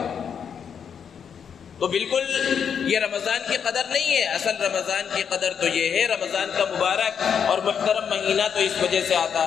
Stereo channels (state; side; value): quieter; right; 7.4 dB